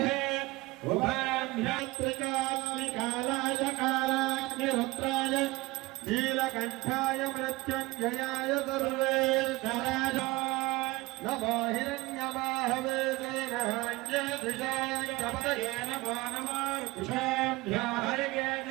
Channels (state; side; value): quieter; left; 21.6 dB